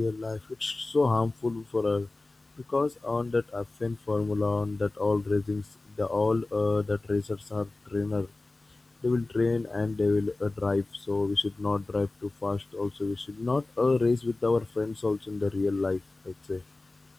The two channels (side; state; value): right; quieter; 3.1 dB